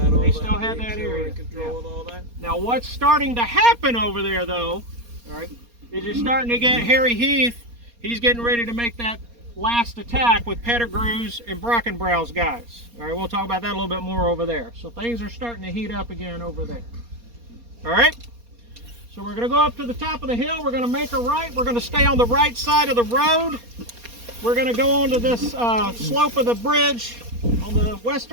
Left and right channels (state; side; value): late; left; 4.2 ms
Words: all that. They still had that control area. and control and all that. Now what's starting to happen over there though, all right, is you're starting to get Harry Heath. He's getting ready to make that last attack with Pettigrew's and Brockenbrow's guys. All right, we'll talk about that a little bit more over there. So things are starting to heat up again over there. All right, so we're going to go up to the top of the hill. We're going to make a right. We're going to stay on the right side of the road. We're going to go onto this slope of the bridge on the